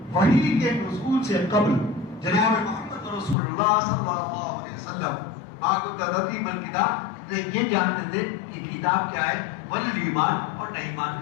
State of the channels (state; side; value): drops out; right; at 3.4 s